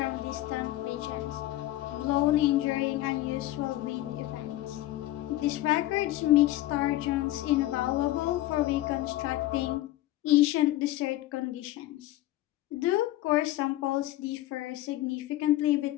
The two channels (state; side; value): quieter; right; 15.6 dB